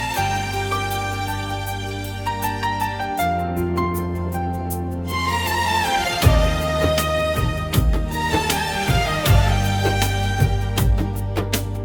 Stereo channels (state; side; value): identical; both; correlation 1.00